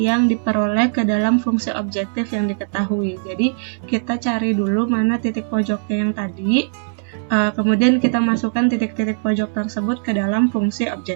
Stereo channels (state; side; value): silent; left; digital silence